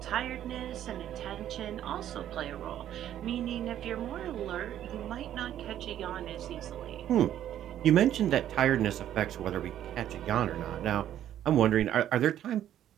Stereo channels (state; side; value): quieter; left; 11.3 dB